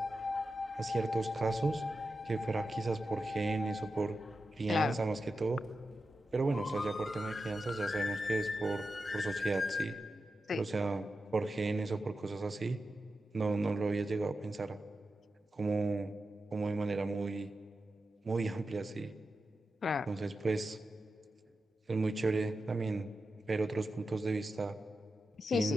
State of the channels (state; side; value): normal; both; correlation 0.90